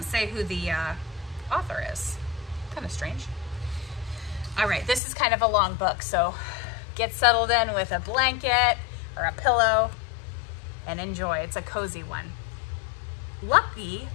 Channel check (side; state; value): right; drops out; at 5.0 s